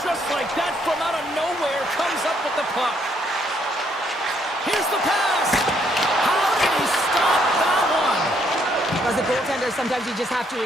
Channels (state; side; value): normal; both; correlation 0.70